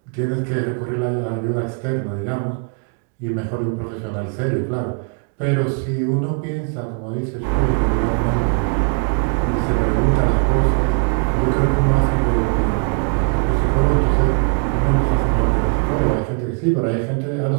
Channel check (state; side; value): quieter; left; 38.9 dB